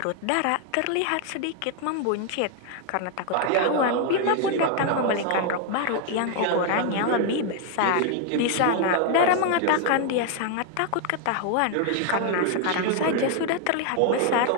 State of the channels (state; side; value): different; both; correlation 0.00